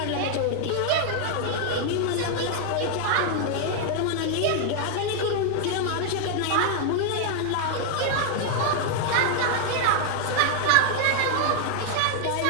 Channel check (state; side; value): different; both; correlation 0.00